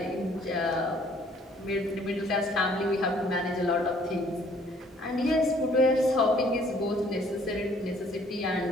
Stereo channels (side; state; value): both; normal; correlation 0.60